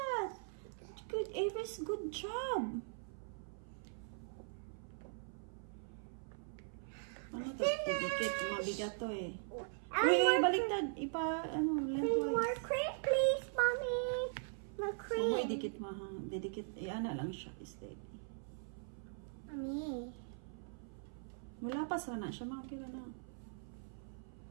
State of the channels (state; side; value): silent; left; 51 dB below the other